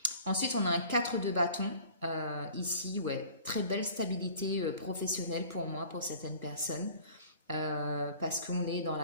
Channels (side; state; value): both; inverted; correlation -0.47